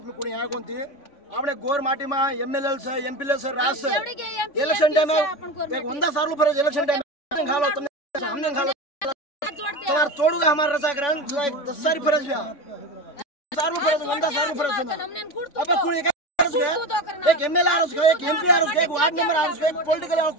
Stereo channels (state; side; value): late; right; 3.5 ms